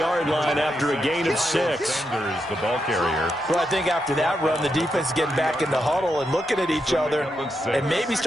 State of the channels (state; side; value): normal; both; correlation 0.84